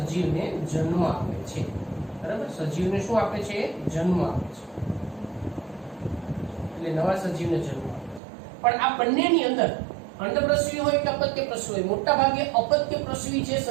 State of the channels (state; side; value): drops out; left; at 8.2 s